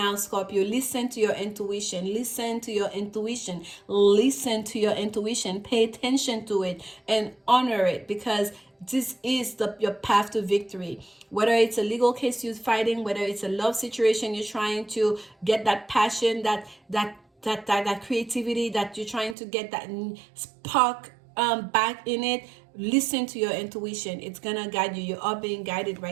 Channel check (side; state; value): left; drops out; at 19.4 s